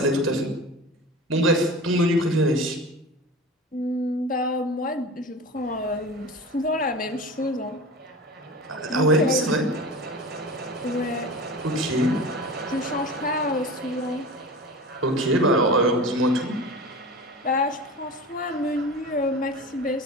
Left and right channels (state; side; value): normal; both; correlation 0.33